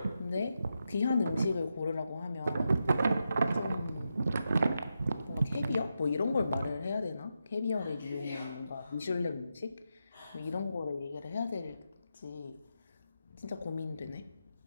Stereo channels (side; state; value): both; inverted; correlation -0.87